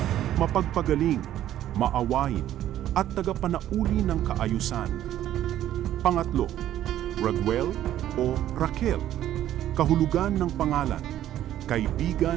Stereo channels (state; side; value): quieter; left; 12.3 dB